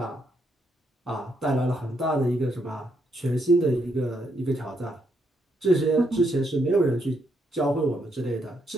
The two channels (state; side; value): normal; both; correlation 0.76